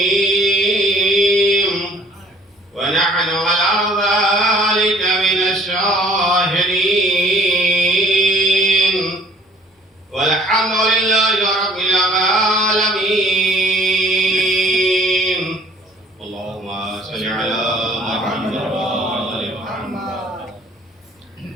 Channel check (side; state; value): both; normal; correlation 0.55